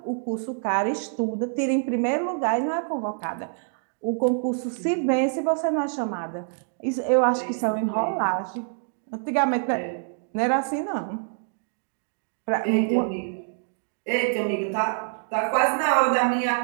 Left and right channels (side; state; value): left; silent; digital silence